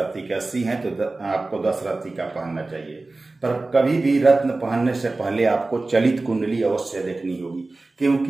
के, 80 है तो आपको 10 रत्ती का पहनना चाहिए। पर कभी भी रत्न पहनने से पहले आपको चलित कुंडली अवश्य देखनी होगी,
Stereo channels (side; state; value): left; quieter; 3.3 dB